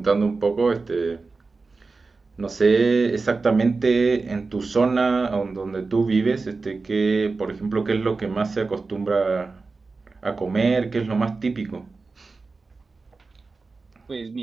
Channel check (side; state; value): left; quieter; 4.0 dB